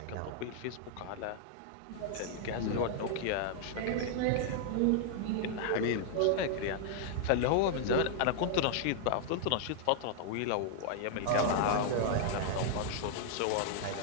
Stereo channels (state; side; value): different; both; correlation -0.01